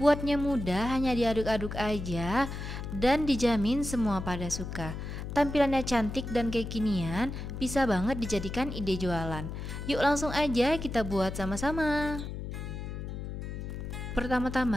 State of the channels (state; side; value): noise; left; hum, 7 dB below the sound